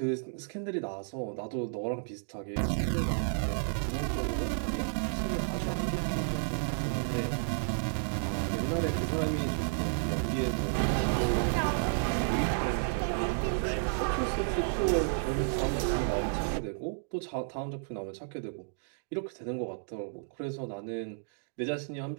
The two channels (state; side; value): silent; left; digital silence